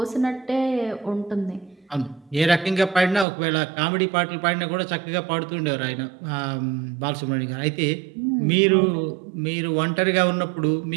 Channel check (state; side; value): drops out; left; at 3.2 s